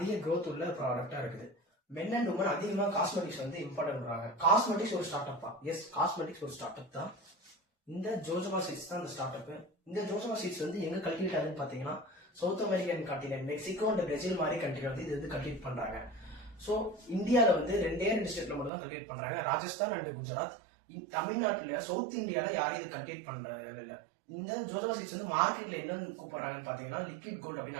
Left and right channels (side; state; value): left; drops out; at 18.7 s